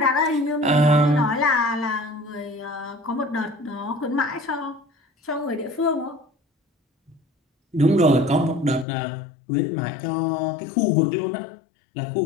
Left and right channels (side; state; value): right; drops out; at 8.8 s